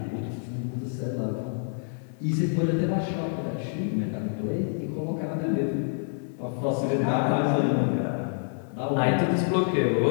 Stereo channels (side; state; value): right; silent; 60 dB below the other